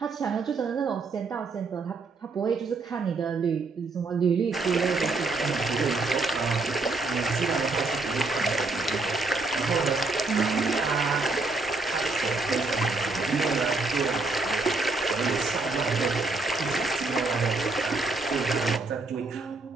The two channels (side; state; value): left; quieter; 3.6 dB